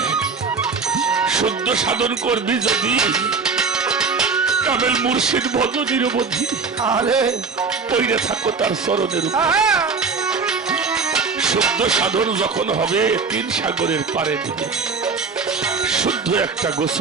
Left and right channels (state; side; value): quieter; left; 4.9 dB